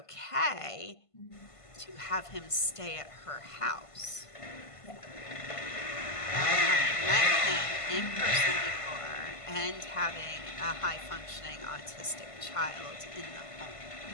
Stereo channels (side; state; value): right; late; 1.5 ms